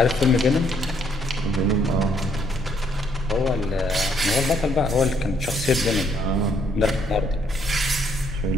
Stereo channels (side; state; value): both; normal; correlation 0.69